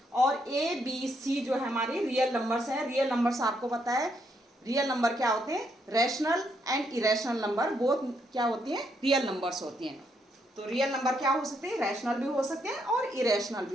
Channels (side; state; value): both; normal; correlation 0.76